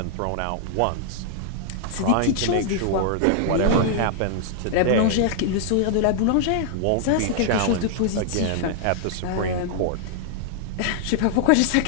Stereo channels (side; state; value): both; different; correlation -0.01